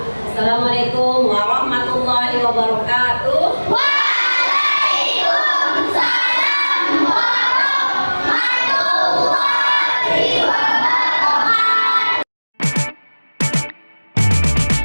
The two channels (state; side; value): inverted; both; correlation -1.00